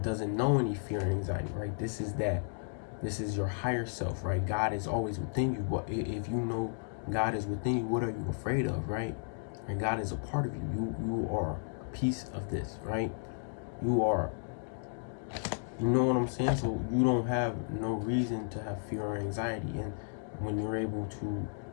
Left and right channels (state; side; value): silent; right; digital silence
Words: doesn't know any fear and anxiety, right? This is your higher self, right? God is always within you. But if you know God is within you, what are you afraid of, right? And God is a part of you. You are a piece of this, right? You are, you know what I'm saying? So you don't have no reason to have fear or anxiety. And when you're able to